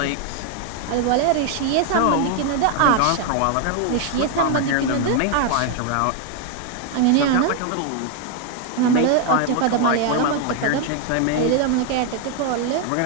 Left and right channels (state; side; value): different; both; correlation 0.01